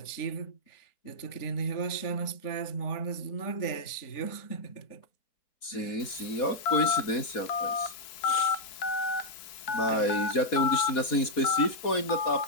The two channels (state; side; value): late; right; 4.2 ms